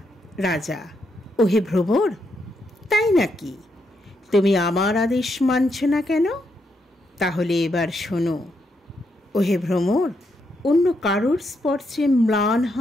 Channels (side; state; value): both; normal; correlation 0.79